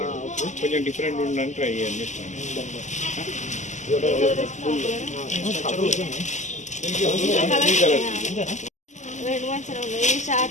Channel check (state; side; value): late; right; 0.34 ms